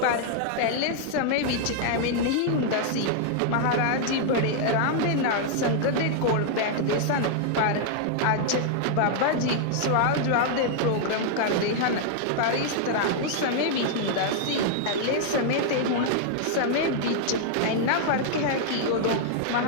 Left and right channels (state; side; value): different; both; correlation -0.01